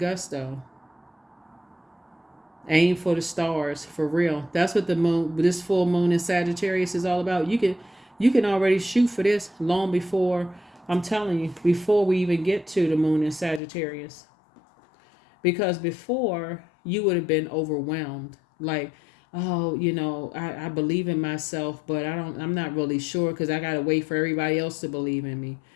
Aim for the stars, for real. That's what this full moon in Sagittarius is all about. You can already shoot for this long before, I'm telling you, before we even get to the moon in Sagittarius. Because before, you would have been overwhelmed. Like, oh, I believe in myself, but I'm not really sure, because I got to wait for everybody else to believe in me.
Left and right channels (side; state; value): right; drops out; at 13.6 s